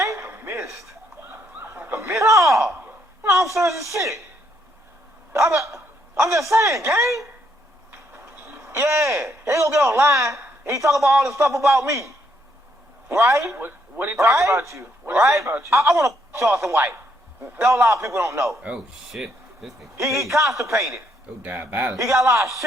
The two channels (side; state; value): both; normal; correlation 0.73